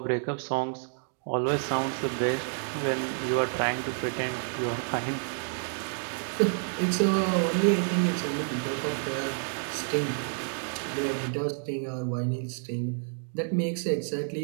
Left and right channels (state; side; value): silent; left; 58 dB below the other